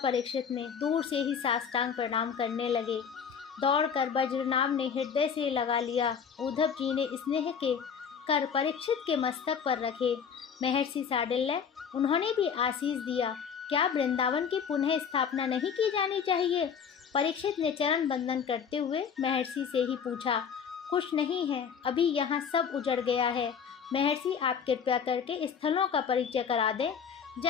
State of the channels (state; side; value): quieter; right; 7.0 dB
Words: ने, दूर से ही साष्टांग प्रणाम करने लगे। दौड़कर बज्रनाभ ने हृदय से लगा लिया। उद्धव जी ने स्नेह के कर परीक्षित के मस्तक पर रखे। महर्षि शांडिल्य, उन्होंने भी आशीष दिया। क्या वृंदावन की पुनः स्थापना नहीं की जानी चाहिए? परीक्षित ने चरण बंदन करते हुए महर्षि से ही पूछा। कुछ नहीं है, अभी यहाँ सब उजड़ गया है। महर्षि, आप कृपया करके स्थलों का परिचय करा दें